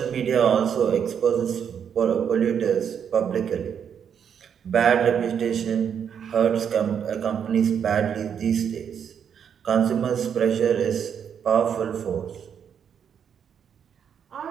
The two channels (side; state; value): left; quieter; 7.9 dB